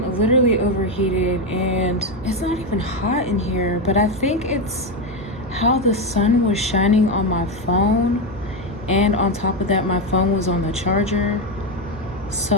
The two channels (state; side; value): normal; both; correlation 0.10